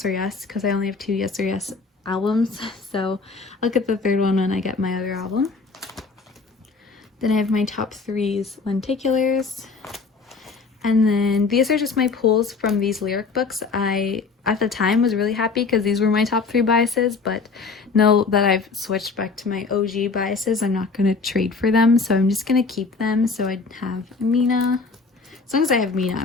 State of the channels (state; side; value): quieter; right; 4.4 dB